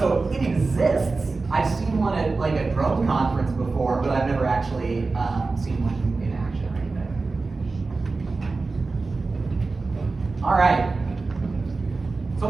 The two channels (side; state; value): left; quieter; 3.8 dB